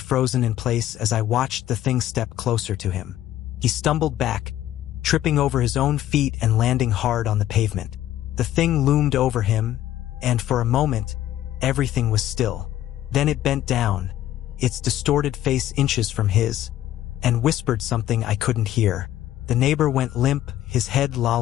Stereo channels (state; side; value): quieter; right; 13.0 dB